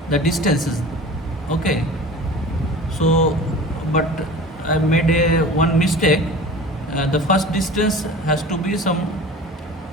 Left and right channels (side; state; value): both; normal; correlation 0.39